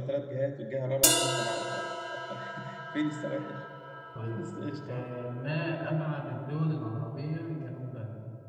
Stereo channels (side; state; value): both; identical; correlation 1.00